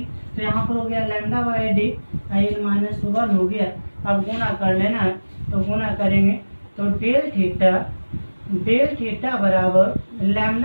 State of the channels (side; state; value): both; inverted; correlation -1.00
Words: तो यहाँ पर हो गया लैम्डा बाई डी एन -1 हो गया। अब गुना कर लेना है, तो गुना करेंगे तो डेल थीटा बराबर